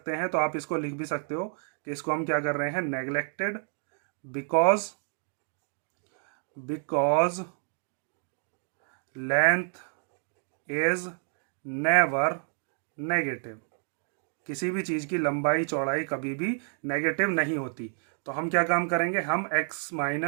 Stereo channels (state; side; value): silent; left; 55 dB below the other